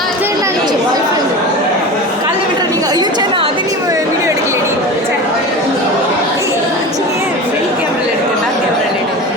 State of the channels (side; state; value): both; normal; correlation 0.30